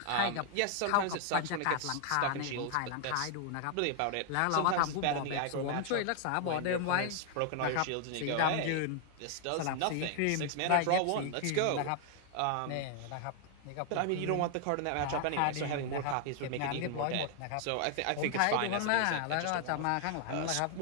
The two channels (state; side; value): different; both; correlation 0.00